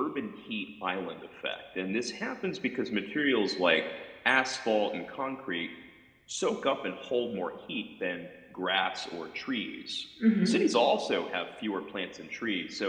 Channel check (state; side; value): identical; both; correlation 1.00